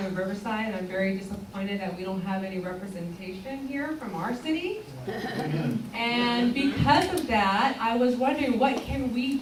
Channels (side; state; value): both; identical; correlation 1.00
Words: of Riverside, and I'm very disappointed that we don't have any representation here from our city. And because of that, I was wondering, what can we